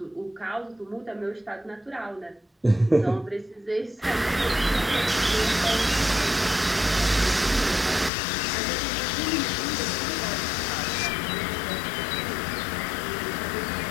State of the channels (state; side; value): drops out; right; at 8.1 s